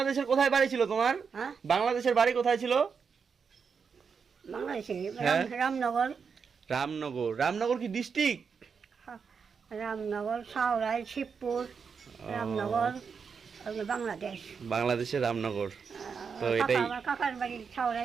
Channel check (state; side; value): quieter; left; 6.0 dB